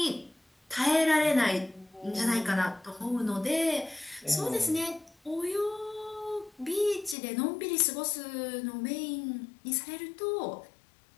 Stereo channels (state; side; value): drops out; right; at 7.2 s